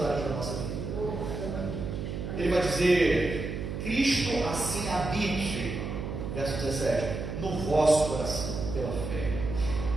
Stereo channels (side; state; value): right; noise; hum, 5 dB below the sound